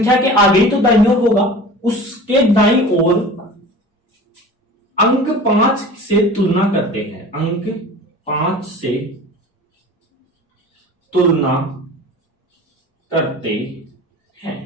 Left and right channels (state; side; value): normal; both; correlation 0.39